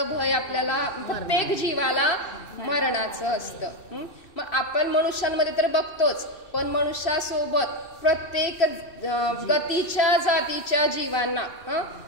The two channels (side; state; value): right; late; 2.6 ms